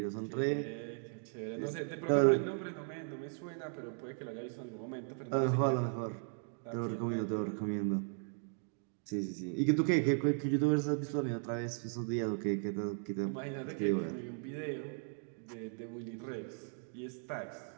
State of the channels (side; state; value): left; silent; 53 dB below the other